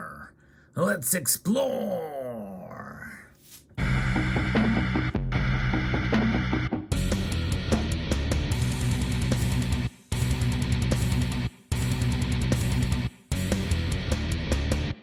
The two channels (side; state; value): both; identical; correlation 1.00